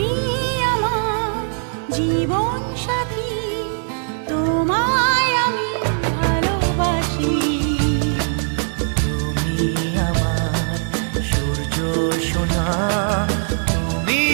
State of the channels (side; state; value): left; silent; 63 dB below the other